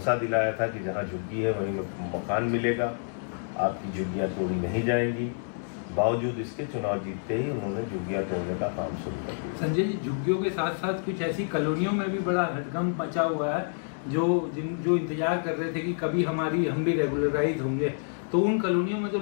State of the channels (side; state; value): right; silent; 59 dB below the other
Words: दिलाया था कि जहाँ झुग्गी है वहीं मकान मिलेगा, आपकी झुग्गियाँ तोड़ी नहीं जाएंगी। बावजूद इसके चुनाव जीतते ही उन्होंने झुग्गियाँ तोड़ने का काम शुरू कर दिया। संजय जी, झुग्गियों के साथ साथ कुछ ऐसी कॉलोनियों में भी बड़ा हड़कंप मचा हुआ है जो इंतजार कर रहे थे कि कभी हम भी रेगुलराइज होंगे। तो उन कॉलोनियों में तो